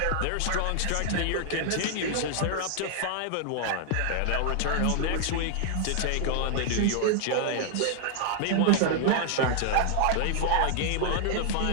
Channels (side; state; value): both; different; correlation 0.00